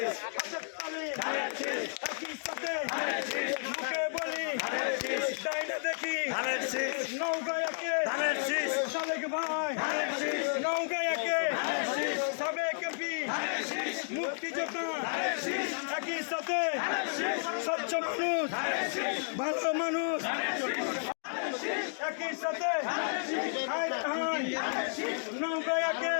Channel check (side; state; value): right; silent; digital silence